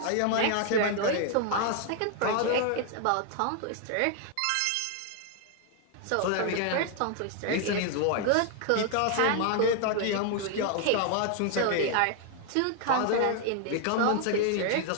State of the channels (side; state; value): both; different; correlation 0.00